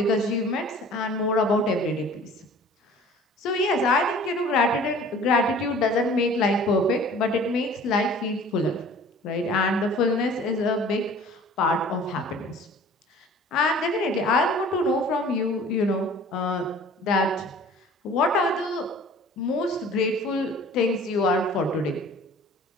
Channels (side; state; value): both; normal; correlation 0.47